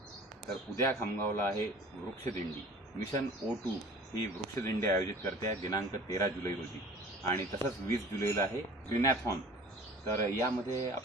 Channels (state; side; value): normal; both; correlation 0.46